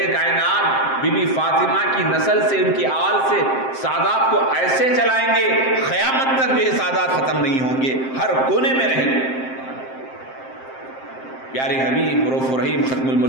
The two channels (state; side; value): late; right; 7.6 ms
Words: کائنات بی بی فاطمہ کی نسل سے، ان کی آل سے سادات کو ایسے چلائیں گے قیامت تک بھی یہ سادات ختم نہیں ہوں گے، ہر کونے میں رہیں گے۔ پیارے حبیب رؤوف الرحیم ختم